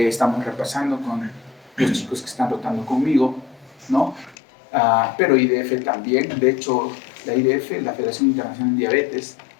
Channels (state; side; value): drops out; right; at 4.4 s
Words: estamos repasando con los chicos que están rotando conmigo, ¿no? Pero IDF también, de hecho, la IDF, la Federación Internacional de Diabetes,